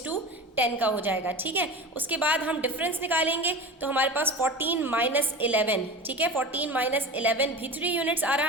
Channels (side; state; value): both; normal; correlation 0.31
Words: का हो जाएगा, ठीक है। उसके बाद हम डिफरेंस निकालेंगे, तो हमारे पास 14 माइनस 11, ठीक है, 14 माइनस 11 भी 3 यूनिट्स आ